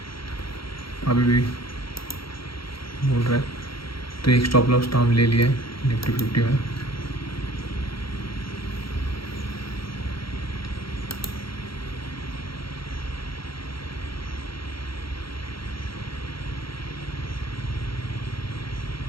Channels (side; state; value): right; late; 0.74 ms